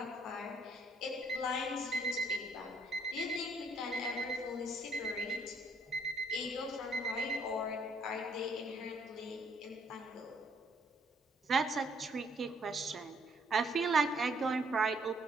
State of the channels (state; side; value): normal; both; correlation 0.66